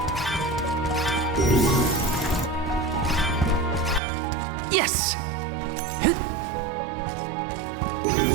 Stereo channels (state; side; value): drops out; left; at 4.0 s